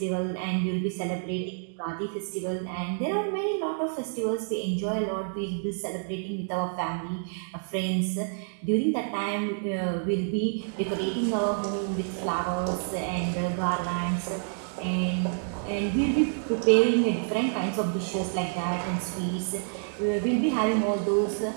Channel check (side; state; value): left; silent; digital silence